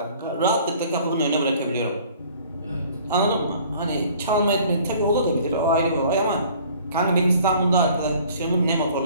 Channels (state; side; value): inverted; both; correlation -0.52